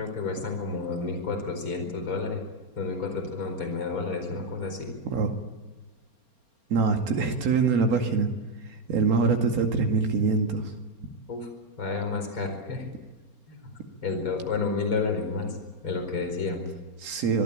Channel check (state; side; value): late; left; 4.3 ms